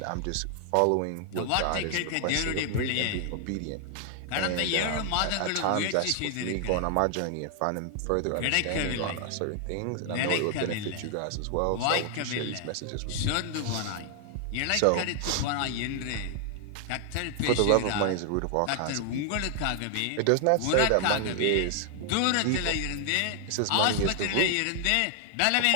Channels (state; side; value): different; both; correlation 0.00